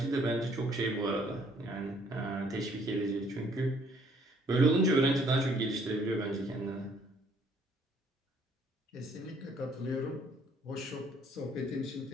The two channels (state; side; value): normal; both; correlation 0.62